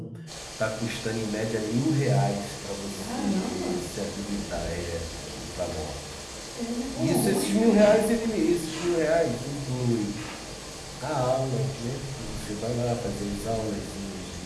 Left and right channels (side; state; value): both; identical; correlation 1.00